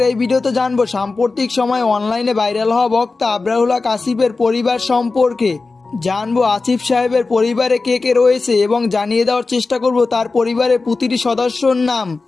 এই ভিডিওতে জানবো সাম্প্রতিক সময়ে অনলাইনে ভাইরাল হওয়া বক্তা আবরারুল হক আসিফের পরিবার সম্পর্কে। জানবো আসিফ সাহেবের পরিবারে কে কে রয়েছে এবং জানিয়ে দেওয়ার চেষ্টা করব তার পরিবারের প্রতিটি সদস্যর নাম।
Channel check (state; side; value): quieter; right; 3.9 dB